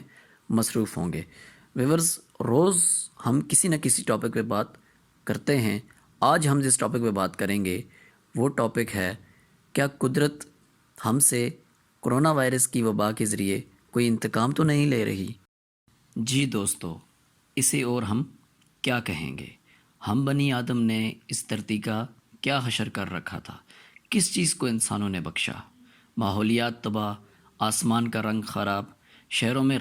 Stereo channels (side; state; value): both; identical; correlation 1.00